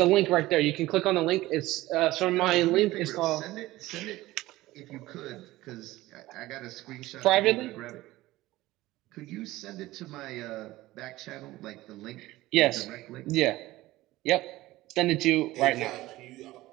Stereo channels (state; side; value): quieter; left; 17.6 dB